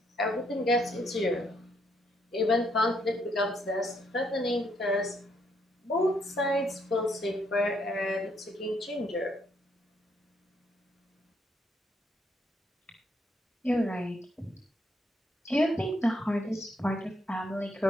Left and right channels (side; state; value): both; normal; correlation 0.73